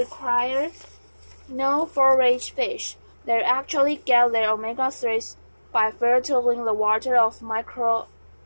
no forage fish. They actually get their omega-3s by filtering the water of microalgae.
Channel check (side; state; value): both; inverted; correlation -1.00